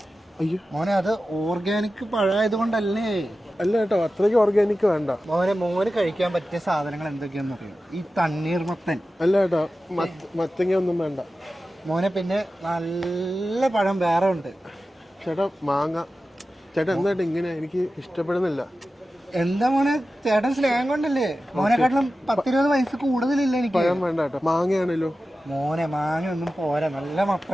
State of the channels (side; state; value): both; normal; correlation 0.94